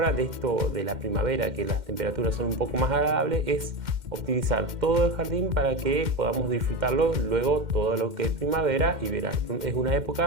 de esto de la primavera, que las temperaturas son un poco más agradables, es optimizar todo el jardín para que podamos disfrutarlo luego todo lo que es primavera y verano. Es una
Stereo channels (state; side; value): late; left; 2.1 ms